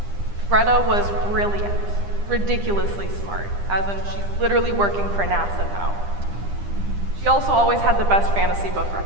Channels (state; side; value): late; left; 9.9 ms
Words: Greta was brilliant, ridiculously smart, as in she's literally working for NASA now. She also always had the best fantasy book